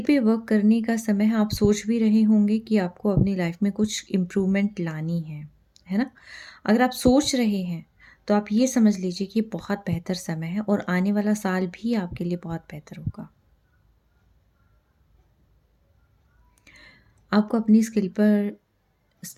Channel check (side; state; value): both; identical; correlation 1.00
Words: पे वर्क करने का समय है, आप सोच भी रहे होंगे कि आपको अपनी लाइफ़ में कुछ इम्प्रूवमेंट लानी है ना? अगर आप सोच रहे हैं, तो आप ये समझ लीजिए कि ये बहुत बेहतर समय है और आने वाला साल भी आपके लिए बहुत बेहतर होगा। आपको अपनी